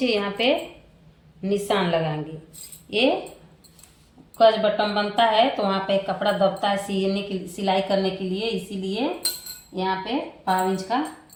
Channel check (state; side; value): identical; both; correlation 1.00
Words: यहाँ पे निशान लगाएंगे। ये कज बटन बनता है तो वहाँ पे कपड़ा दबता है सीने की सिलाई करने के लिए, इसीलिए यहाँ पे 5 इंच का